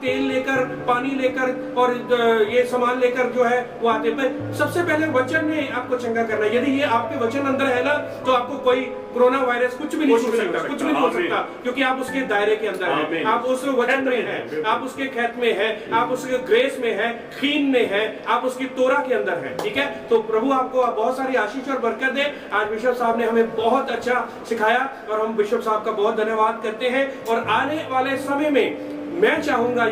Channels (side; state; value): both; identical; correlation 1.00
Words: तेल लेकर, पानी लेकर और ये सामान लेकर जो है वो आते। पर सबसे पहले वचन ने आपको चंगा करना है। यदि ये आपके वचन अंदर है ना, तो आपको कोई कोरोना वायरस कुछ भी नहीं हो सकता, कुछ भी नहीं हो सकता, क्योंकि आप उसके दायरे के अंदर हैं, आप उस वचन में हैं, आप उसके खेत में हैं, आप उसके ग्रेस में हैं, खीन में हैं, आप उसकी तोरा के अंदर हैं, ठीक है। तो प्रभु आपको बहुत सारी आशीष और बरकत दे। आज बिशप साहब ने हमें बहुत अच्छा सिखाया और हम बिशप साहब का बहुत धन्यवाद करते हैं। और आने वाले समय में मैं चाहूंगा,